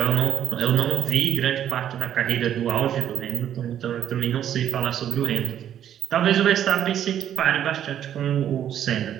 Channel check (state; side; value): quieter; left; 10.3 dB